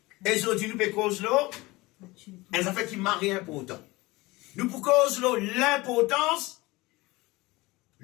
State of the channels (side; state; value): right; quieter; 21.5 dB